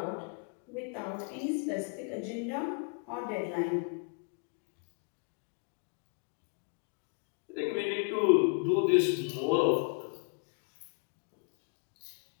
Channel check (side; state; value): right; quieter; 39.1 dB